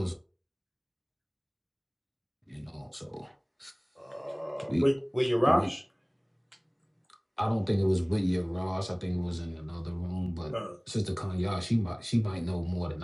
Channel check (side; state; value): both; identical; correlation 1.00